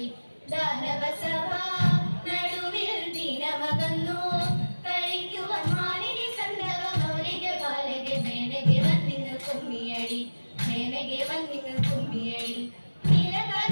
ദാനവസഭ നടുവിൽ ദിനമകന്നു കളിക്കുവാൻ മാലിനി സന്ദവ മൗലിക ബാലക മേനകെ വന്നിന്നു കുമ്മിയടി മേനകെ വന്നിന്നു കുമ്മിയടി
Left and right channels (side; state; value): both; inverted; correlation -1.00